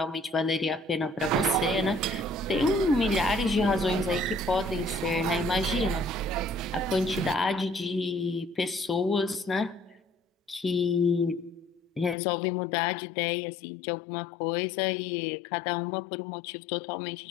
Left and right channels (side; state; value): right; drops out; at 12.2 s